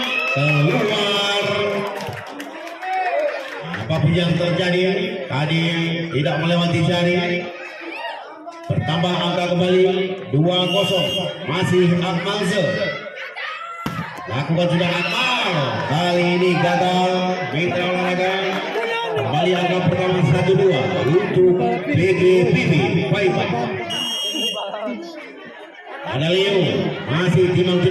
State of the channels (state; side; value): identical; both; correlation 1.00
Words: keluar. Apapun yang terjadi tadi tidak melewati jari. Bertambah angka kembali 2-0, masih Akmal lakukan sudah Akmal, kali ini gagal mitra olahraga. Kembali angka pertama 1-2 untuk PGPB Paipa. Ada Leo masih